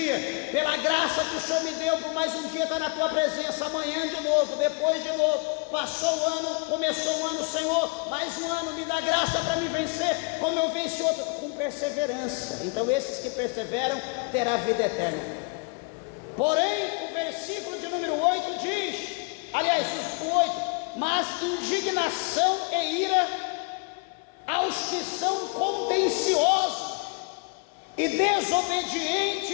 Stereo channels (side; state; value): right; quieter; 30.9 dB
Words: pela graça que o Senhor me deu, por mais um dia estar na tua presença. Amanhã de novo, depois de novo. Passou o ano, começou o ano, Senhor, mais um ano, me dá graça para me vencer, como eu venci outro, com perseverança. Então esses que perseveram, terá vida eterna. Porém, o versículo de número 8 diz, aliás, o 8, mas indignação e ira aos que são contenciosos e